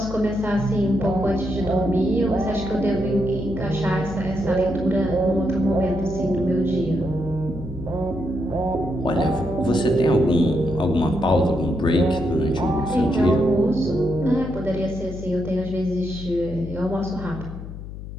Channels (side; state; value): left; noise; hum, 10 dB below the sound